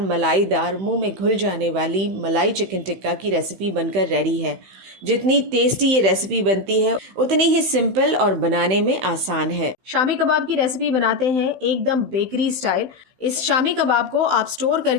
मलाईदार, मुंह में घुल जाने वाली मलाई चिकन टिक्का की रेसिपी बनकर रेडी है। जितनी टेस्टी ये रेसिपी बनती है उतनी ही सिंपल और बनाने में आसान है। शामी कबाब की रेसिपी बनाते हैं एकदम बेकरी स्टाइल। इस शामी कबाब को आप स्टोर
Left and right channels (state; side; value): late; left; 16 ms